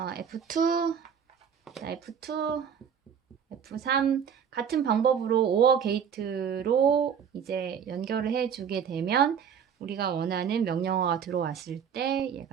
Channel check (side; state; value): left; quieter; 7.7 dB